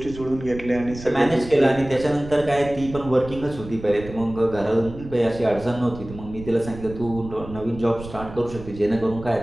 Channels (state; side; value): noise; right; rumble, 14 dB below the sound